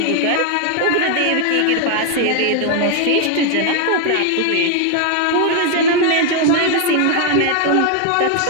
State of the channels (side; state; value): both; different; correlation 0.01